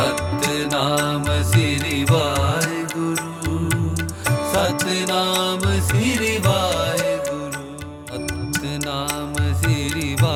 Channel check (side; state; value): both; identical; correlation 1.00